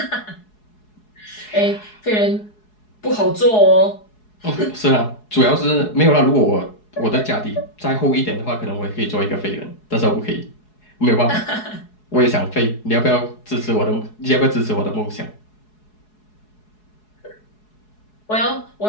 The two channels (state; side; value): late; right; 4.7 ms